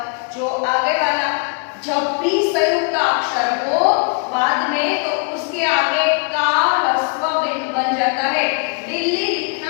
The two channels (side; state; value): right; quieter; 37.1 dB